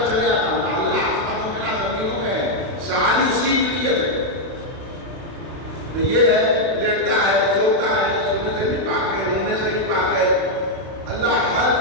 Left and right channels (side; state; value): left; late; 32 ms